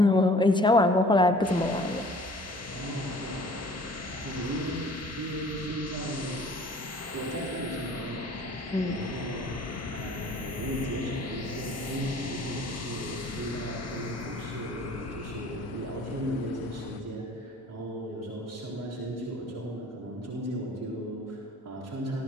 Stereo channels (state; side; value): normal; both; correlation 0.50